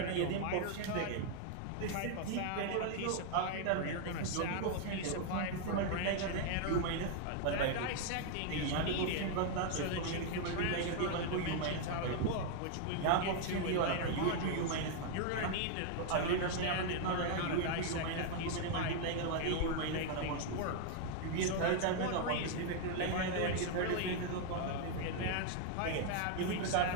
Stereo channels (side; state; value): both; different; correlation 0.00